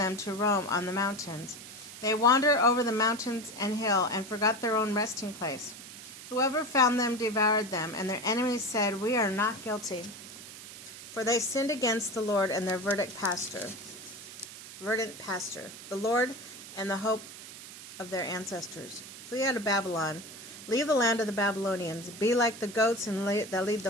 to roam on the mountains. They wander over the mountains and hill and forgot their own resting place. Whoever found them devoured them, and their enemies said, We are not guilty. For they sinned against the Lord and their verdant pastor, the Lord and the hope of their ancestors. Flee out of Babylon. Leave the land of the Babylonians. Be like the goats that lead the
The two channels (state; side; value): noise; right; hiss, 14 dB below the sound